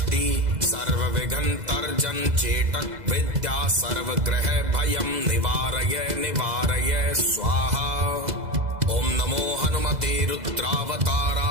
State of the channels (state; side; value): late; left; 2.0 ms